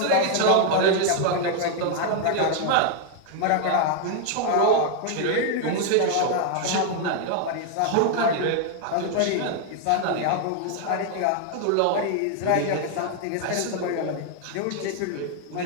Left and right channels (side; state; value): both; different; correlation 0.00